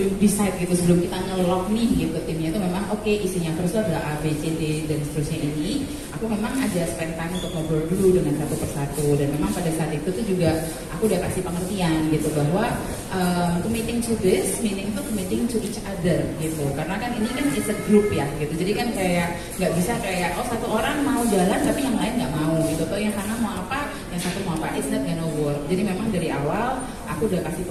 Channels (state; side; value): identical; both; correlation 1.00